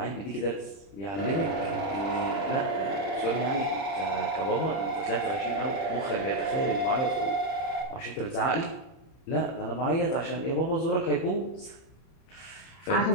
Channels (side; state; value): right; late; 31 ms